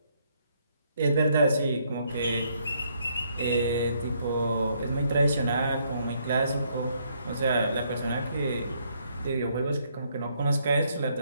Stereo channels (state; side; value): inverted; both; correlation -0.71